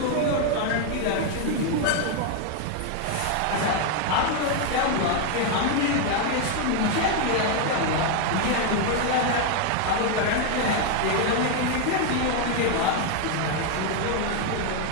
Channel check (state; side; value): different; both; correlation 0.01